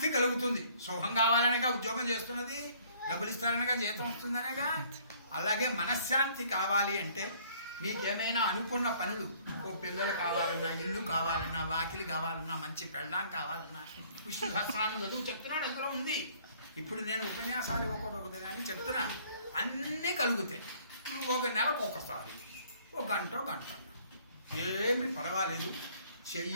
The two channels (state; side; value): inverted; both; correlation -0.59